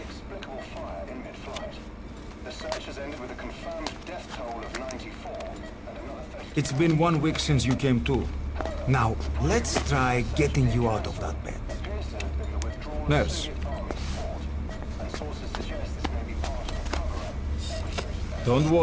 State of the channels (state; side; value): identical; both; correlation 1.00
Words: fire in mid-flight. The search has ended with a confirmed death toll of 94 and another 30. It's been 1 week since you came to. Now, let's try getting you out of that bed. Appears to have been the withdrawal of Nurse. Soviet Army's fort, and sources suggest this may be part of a cover-up. Don't